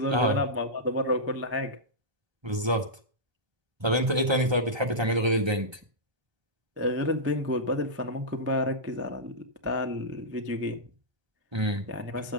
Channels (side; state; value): left; late; 1.3 ms